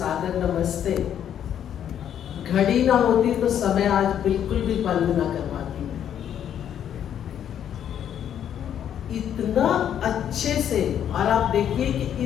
नमस्ते। घड़ी ना होती तो समय आज बिल्कुल भी बंद ना करवाती मैं। इतना अच्छे से, और आप देखिए कि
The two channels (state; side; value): quieter; right; 9.6 dB